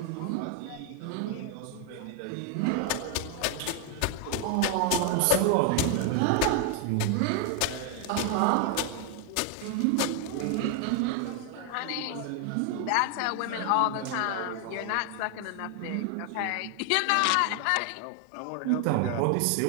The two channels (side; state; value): both; different; correlation 0.00